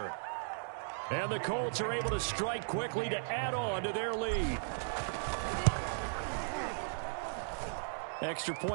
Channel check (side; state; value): left; silent; digital silence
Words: And the Colts are able to strike quickly to add on to their lead. Extra